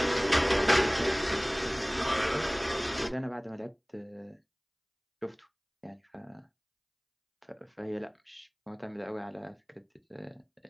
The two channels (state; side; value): identical; both; correlation 1.00